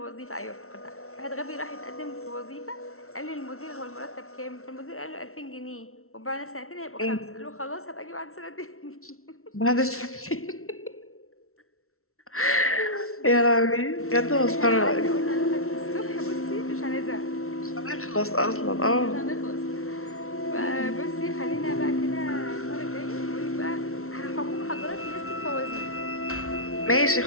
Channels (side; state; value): right; late; 0.63 ms